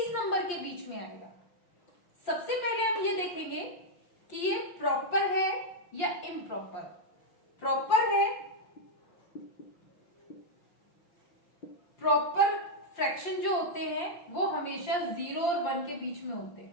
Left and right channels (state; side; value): late; right; 5.7 ms